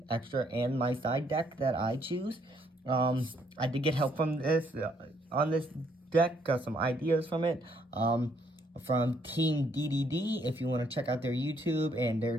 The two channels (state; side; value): normal; both; correlation 0.69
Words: extra, and my side deck that I choose. I did get help from this on this deck, got some ideas from it. From Team DDD, if you want to check out their YouTube and